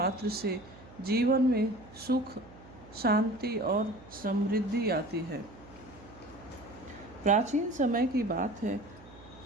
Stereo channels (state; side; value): noise; right; hum, 20 dB below the sound